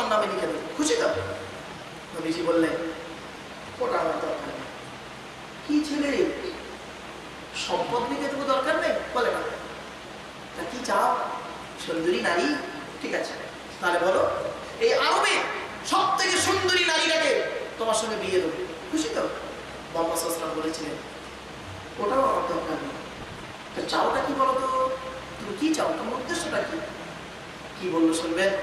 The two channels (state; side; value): identical; both; correlation 1.00